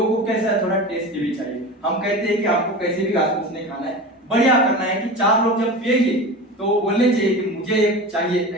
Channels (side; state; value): both; normal; correlation 0.30